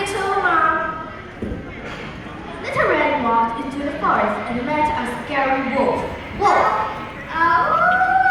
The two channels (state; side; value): identical; both; correlation 1.00